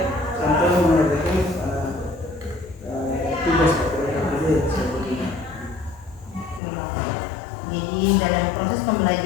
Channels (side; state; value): right; drops out; at 6.6 s